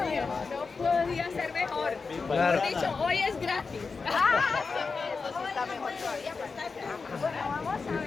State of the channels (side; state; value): right; quieter; 4.6 dB